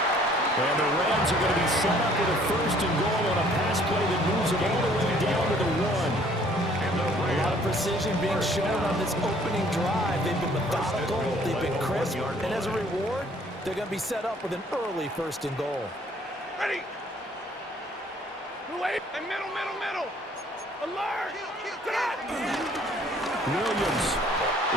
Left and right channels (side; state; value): both; normal; correlation 0.59